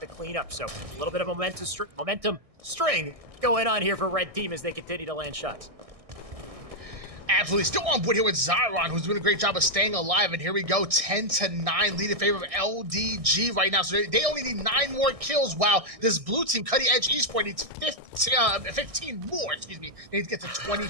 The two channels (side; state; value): left; late; 1.6 ms